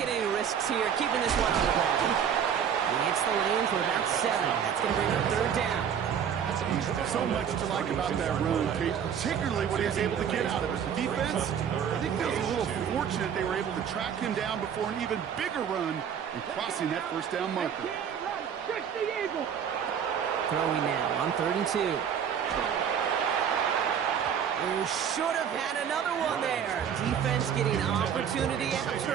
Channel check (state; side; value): quieter; left; 8.1 dB